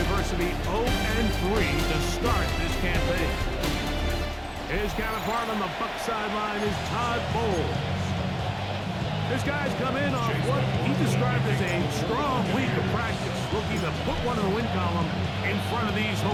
adversity, 0-3 to start this campaign. His counterpart on the Buck sideline is Todd Bowles. This guy's come in off what he described as a strong week of practice, looking to put one in the win column in front of these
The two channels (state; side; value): identical; both; correlation 1.00